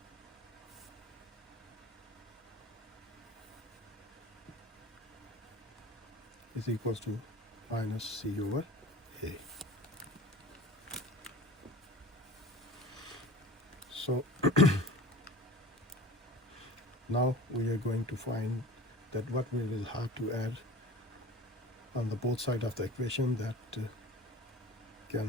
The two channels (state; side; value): normal; both; correlation 0.39